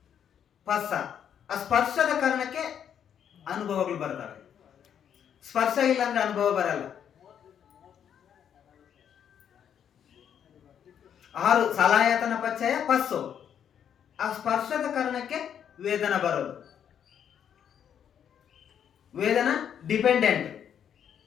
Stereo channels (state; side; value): quieter; right; 8.8 dB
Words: ಪಸ್ಸ. ಆ ಸ್ಪರ್ಶದ ಕಾರಣಕ್ಕೆ ಅನುಭವಗಳು ಬರ್ತವೆ. ಸ್ಪರ್ಶ ಇಲ್ಲ ಅಂದ್ರೆ ಅನುಭವ ಬರಲ್ಲ. 6 ಸಲಾಯತನ ಪಚ್ಚಯ ಪಸ್ಸು. ಆ ಸ್ಪರ್ಶದ ಕಾರಣಕ್ಕೆ ವೇದನ ಬರೋದು. ವೇದನ ಡಿಪೆಂಡೆಂಟ್